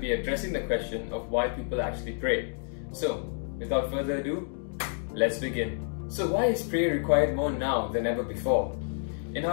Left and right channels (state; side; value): silent; right; 58 dB below the other